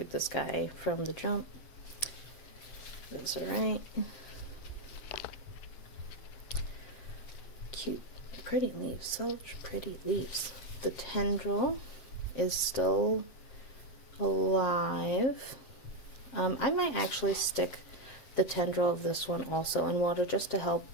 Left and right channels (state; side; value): late; right; 7.5 ms